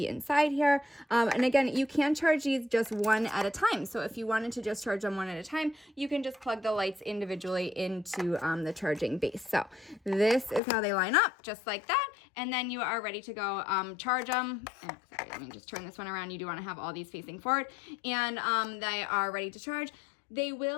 inside here. And again, you can charge these just 1 at a time. So if you wanted to just charge them 1 at a time, you can just plug the lights individually into the charging base. So this is how they line up, just like that. And then you are ready to go charge them. Sorry, let me just turn this one around. You do want to have all these facing forward. And they are ready to charge. They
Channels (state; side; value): drops out; right; at 10.6 s